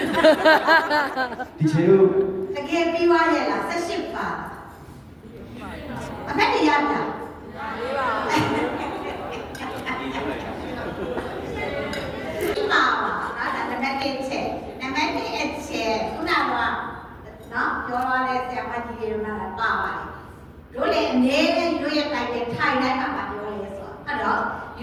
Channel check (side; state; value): both; identical; correlation 1.00